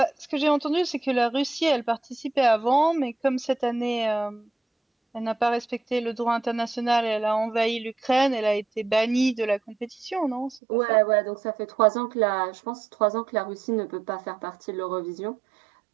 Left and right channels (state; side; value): drops out; left; at 10.6 s